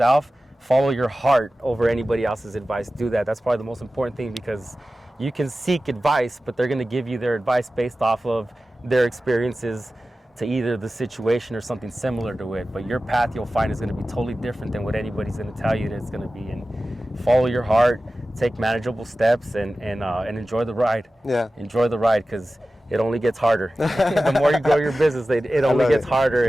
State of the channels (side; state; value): both; normal; correlation 0.95